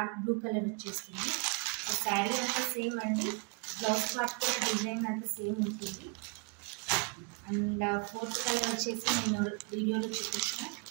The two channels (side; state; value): left; quieter; 32.4 dB